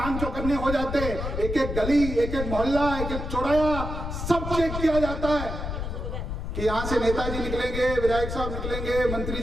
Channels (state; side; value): noise; left; rumble, 5 dB below the sound